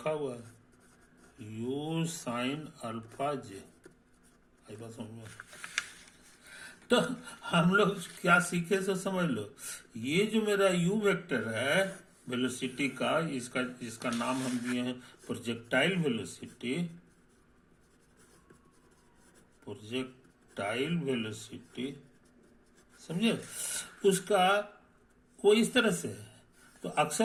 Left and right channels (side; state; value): both; identical; correlation 1.00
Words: हुआ है, यू साइन अल्फा जे। आई बात समझ में? तो हम लोग क्या सीखे सो समझ लो, ये जो मेरा यू वेक्टर है वेलोसिटी का, इसका नाम हम दिए हैं प्रोजेक्टाइल वेलोसिटी, प्रोजेक्टाइल वेलोसिटी। समझे, उसका वो इस तरह से है। तो